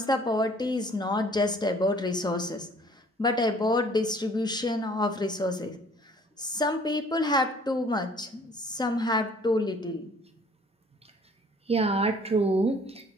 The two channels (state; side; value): normal; both; correlation 0.55